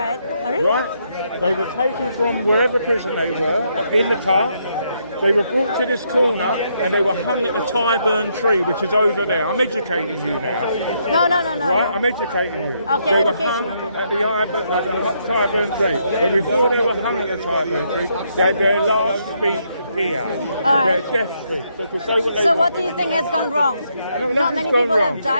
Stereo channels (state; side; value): inverted; both; correlation -0.75